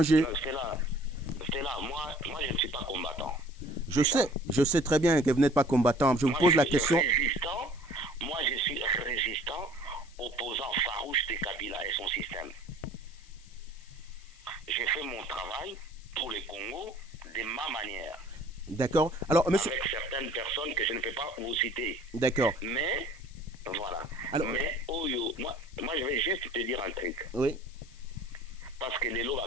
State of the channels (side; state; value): left; noise; hiss, 24 dB below the sound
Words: C'est là, moi je ne suis pas combattant. Je sais très bien que vous n'êtes pas combattant. Je vous pose la question. Moi je suis résistant, opposant farouche de Kabila et son système. J'ai fait mon travail pour le Congo de ma manière. D'accord. Alors, monsieur... Avec certaines personnes que je ne peux pas vous citer. D'accord. Mais, voilà. Alors... Mais, moi je vais juste te dire un truc. Oui. Parce que les lois